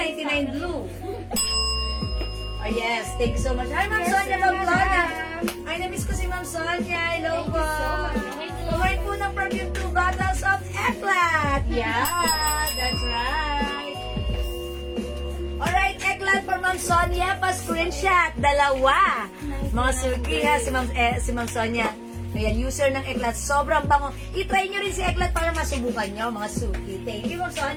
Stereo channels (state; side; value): identical; both; correlation 1.00